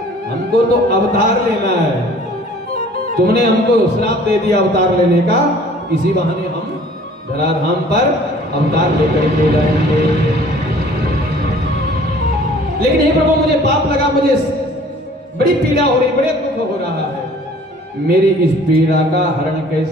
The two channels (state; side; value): normal; both; correlation 0.51